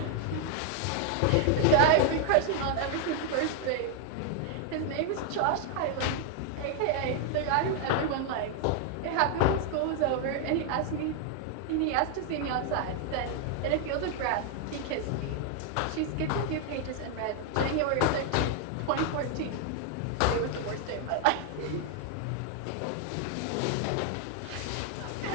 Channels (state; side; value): different; both; correlation 0.00